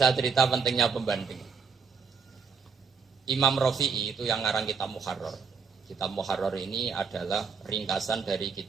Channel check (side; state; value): left; quieter; 5.6 dB